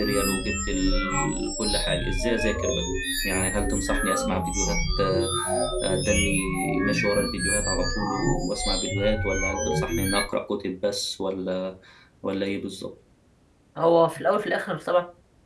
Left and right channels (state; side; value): identical; both; correlation 1.00